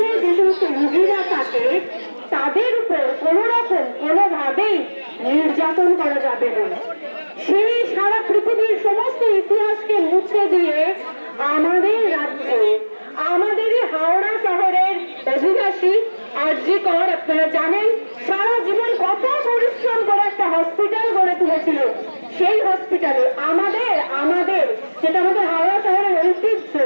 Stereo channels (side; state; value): both; inverted; correlation -1.00